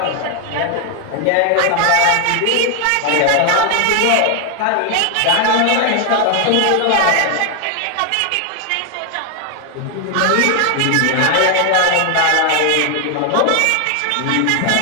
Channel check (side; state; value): both; different; correlation 0.00